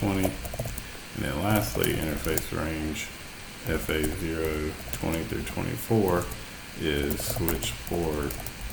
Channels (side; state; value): both; identical; correlation 1.00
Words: And then lastly, interface range FA020 through 24 is switch port